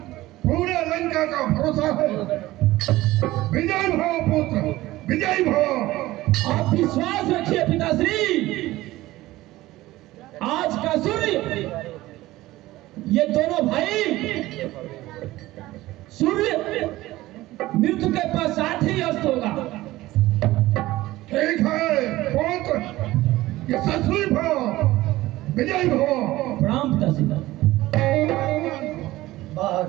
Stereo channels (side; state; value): left; quieter; 17.3 dB